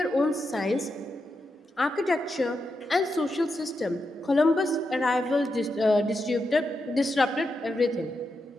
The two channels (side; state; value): both; normal; correlation 0.86